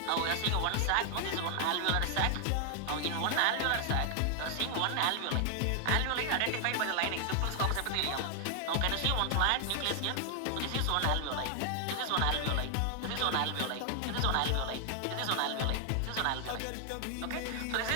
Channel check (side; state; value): both; different; correlation 0.00